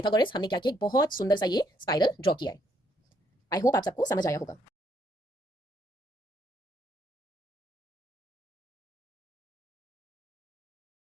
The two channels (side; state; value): both; normal; correlation 0.71